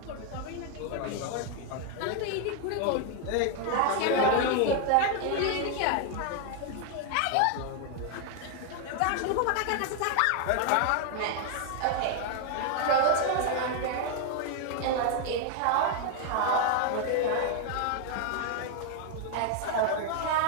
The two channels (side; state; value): both; different; correlation 0.00